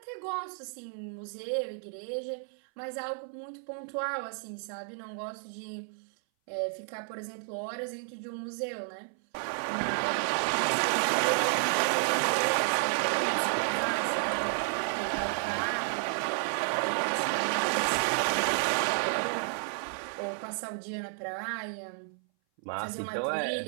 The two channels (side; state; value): left; silent; 57 dB below the other